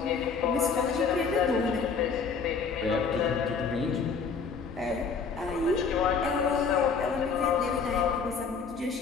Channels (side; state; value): right; quieter; 5.4 dB